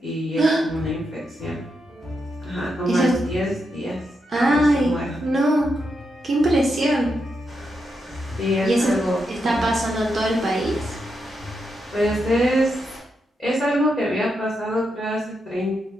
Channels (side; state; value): both; normal; correlation 0.84